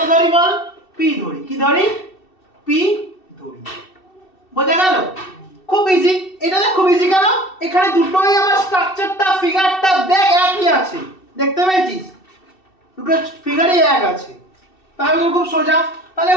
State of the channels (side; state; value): right; late; 2.7 ms